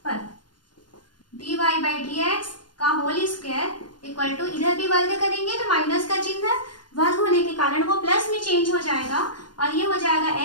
पर d y by d x का होल स्क्वायर इक्वल टू, इधर भी वर्ग करेंगे तो माइनस का चिन्ह वर्ग होने के कारण वो प्लस में चेंज हो जाएगा और ये हो जाएगा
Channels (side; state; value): right; late; 0.71 ms